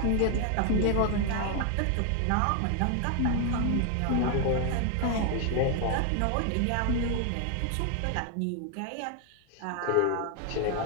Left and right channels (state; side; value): different; both; correlation 0.00